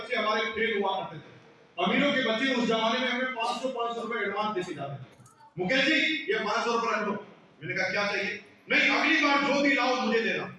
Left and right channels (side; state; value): both; identical; correlation 1.00